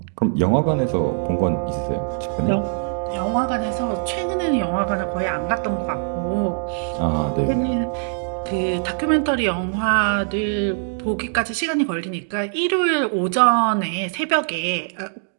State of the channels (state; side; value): silent; left; digital silence